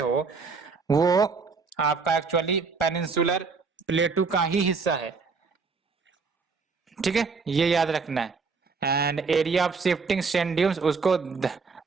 वो आपका एक्चुअली पेनिनसुलर प्लेटू का ही हिस्सा है। ठीक है, ये याद रखना है। And area of shifting sand dunes उसको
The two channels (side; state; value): left; quieter; 4.7 dB